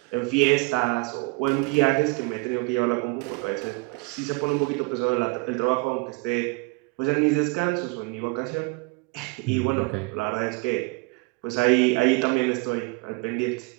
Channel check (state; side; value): quieter; left; 29.0 dB